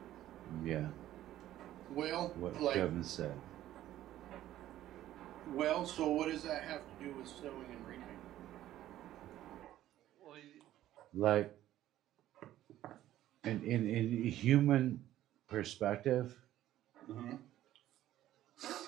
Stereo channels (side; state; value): left; quieter; 13.4 dB